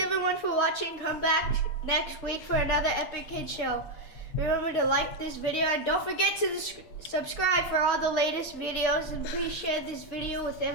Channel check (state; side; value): late; right; 8.6 ms